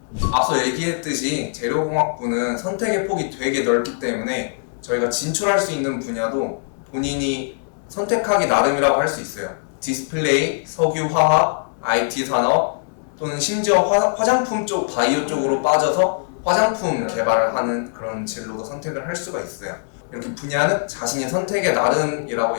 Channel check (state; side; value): silent; right; digital silence